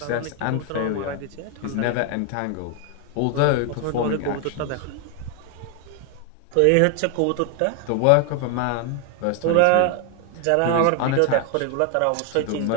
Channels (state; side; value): different; both; correlation 0.00